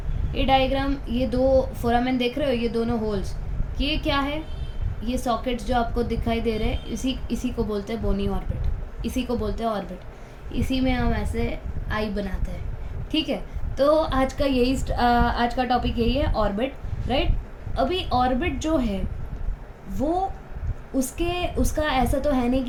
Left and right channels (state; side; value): identical; both; correlation 1.00